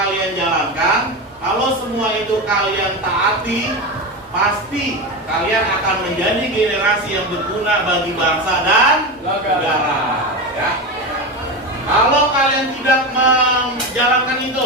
jalankan, kalau semua itu kalian taati, pasti kalian akan menjadi generasi yang berguna bagi bangsa dan negara, ya. Kalau kalian tidak menjalankan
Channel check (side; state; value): both; normal; correlation 0.19